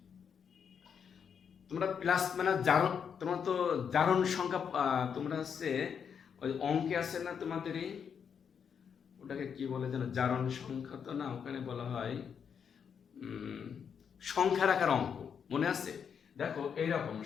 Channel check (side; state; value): right; quieter; 7.2 dB